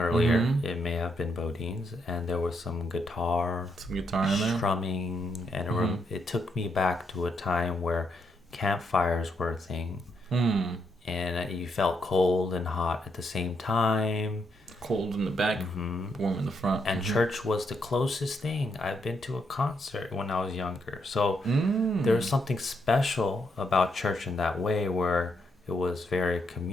earlier. Mm-hmm. It may have been Bodines, and there was some guitar in there, strumming, and it took me back to a time where campfires were a thing, and you felt cold and hot at the same time. Cold in the back, warm in the front. And church was the closest thing. I've been to a concert when I was younger. So there's something special about church in that way, where it was very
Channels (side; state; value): both; normal; correlation 0.78